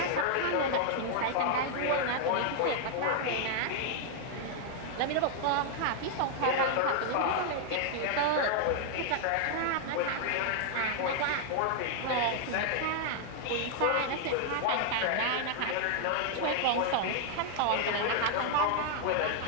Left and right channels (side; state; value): both; different; correlation 0.00